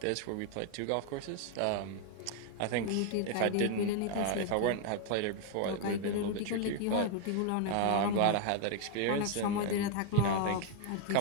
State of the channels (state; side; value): different; both; correlation 0.00